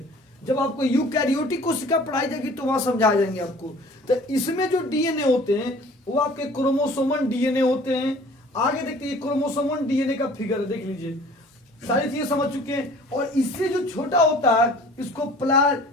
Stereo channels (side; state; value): both; normal; correlation 0.49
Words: जब आपको यूकैरियोटिक कोशिका पढ़ाई जाएगी तो वहां समझा जाएंगे आपको। तो इसमें जो डीएनए होते हैं वो आपके क्रोमोसोमन डीएनए होते हैं। आगे देखते हैं, क्रोमोसोमन डीएनए का फिगर देख लीजिए, सारी चीजें समझ चुके हैं। और इससे जो छोटा होता है इसको